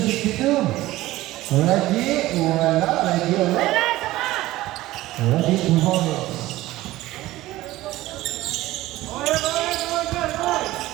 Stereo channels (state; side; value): quieter; left; 16.9 dB